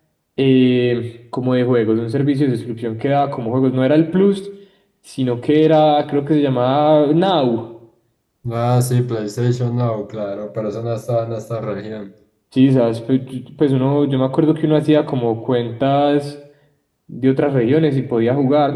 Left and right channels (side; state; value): both; identical; correlation 1.00